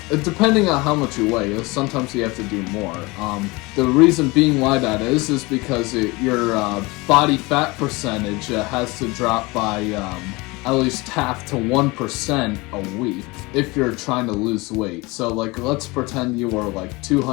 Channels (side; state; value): right; quieter; 24.1 dB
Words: depending on how much you weigh. Sometimes you have to do more. The reason being why that is because your body fat percentage has to drop by at least half to 1% a week if you're trying to lose weight. So like, let's pretend you were like